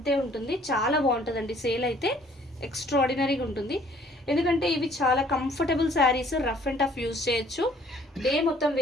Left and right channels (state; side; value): normal; both; correlation 0.59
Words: ఉంటుంది, చాలా బాగుంటుందండి. సేల్ అయితే ఎక్స్ట్రాడినరీగా ఉంటుంది, ఎందుకంటే ఇవి చాలా comfortable saris, rough and tough use చేయొచ్చు, డే మొత్తం